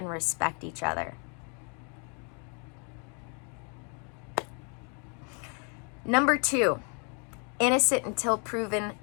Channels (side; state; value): right; quieter; 37.3 dB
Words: respect each other. Number two, innocent until proven